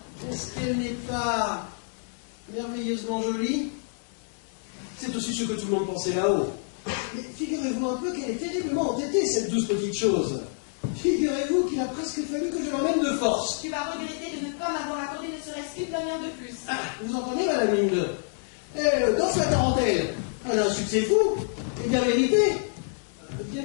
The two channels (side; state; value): right; silent; digital silence